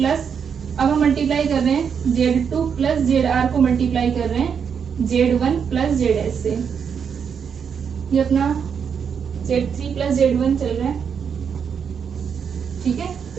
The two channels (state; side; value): quieter; left; 7.0 dB